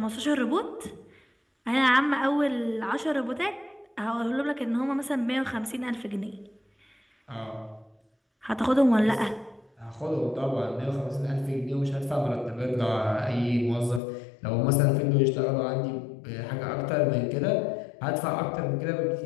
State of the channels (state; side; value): drops out; right; at 14.0 s